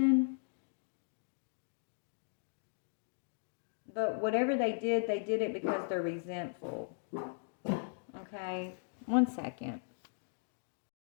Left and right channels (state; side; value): silent; right; digital silence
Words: But whatever they did it because they're resentful. Okay, one second.